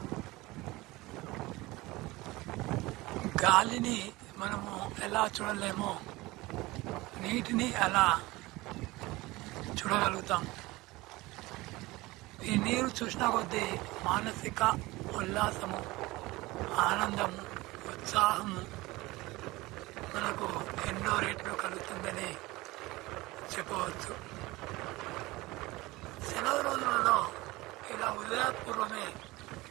గాలిని మనము ఎలా చూడలేమో నీటిని అలా చూడగలుగుతాం. ఈ నీరు చూసిన కొద్దీ మానసిక ఉల్లాసము, ఆనందము, ఉత్సాహము మనకు ఎన్నో రేట్లు కలుగుతుందని చెప్పవచ్చు. సెలవు రోజులలో ఇలా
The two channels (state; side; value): quieter; left; 20.6 dB